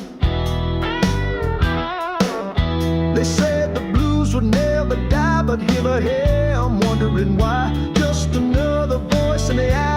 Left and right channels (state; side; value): identical; both; correlation 1.00